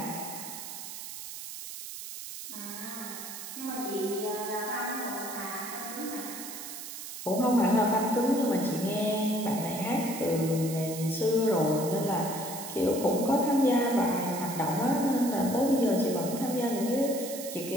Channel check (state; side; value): noise; right; hiss, 9 dB below the sound